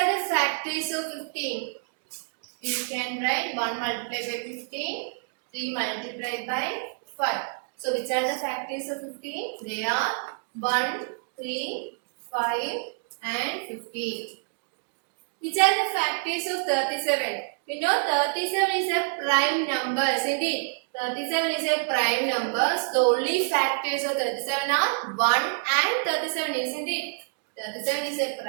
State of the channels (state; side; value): silent; left; 60 dB below the other